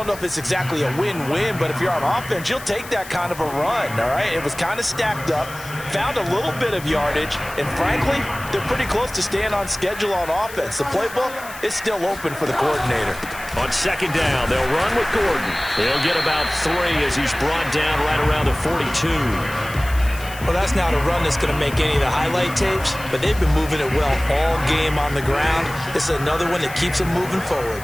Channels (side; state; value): left; noise; hiss, 16 dB below the sound